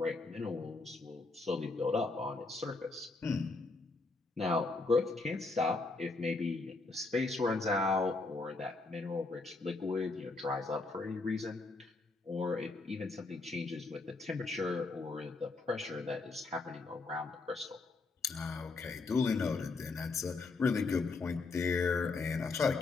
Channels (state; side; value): quieter; right; 3.7 dB